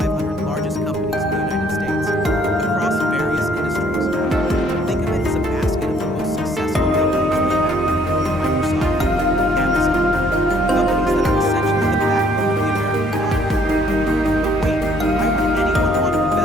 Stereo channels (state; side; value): normal; both; correlation 0.64